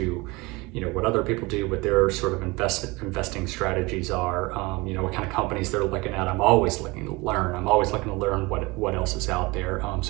you know, what other people do, what their sort of investing strategies are, you know, what kind of companies they're looking at. I'm always looking to learn. I'm always looking to learn what else is out there.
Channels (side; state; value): left; quieter; 24.0 dB